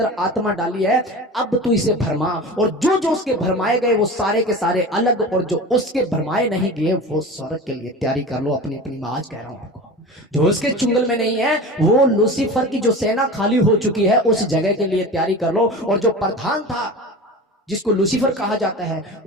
आत्मा डाली है, अब तू इसे भरमा। और जो जो उसके भरमाए गए वो सारे के सारे अलग, और जो उसके भरमाए नहीं गए वो स्वर्ग के लिए तैयारी कर लो अपनी अपनी। मैं आज कह रहा हूं आपको, जो उसके चुंगल में नहीं है वो लूसीफर की जो सेना खाली हो चुकी है उस जगह के लिए तैयारी कर लो। और जो प्रधान था जिसको लूसीफर कहा जाता है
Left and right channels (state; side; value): normal; both; correlation 0.33